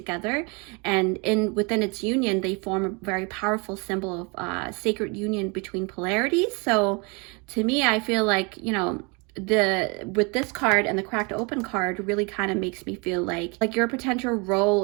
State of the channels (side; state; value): left; quieter; 30.6 dB